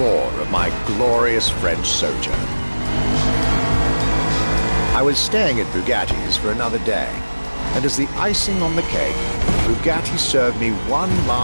of my glorious French sojourn. I was staying at Bugatti's for another day, and as the icing on the cake, Bugatti served me one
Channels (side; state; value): both; inverted; correlation -1.00